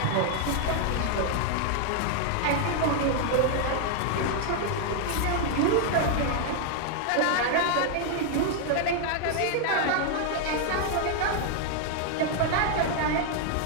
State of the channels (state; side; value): different; both; correlation 0.00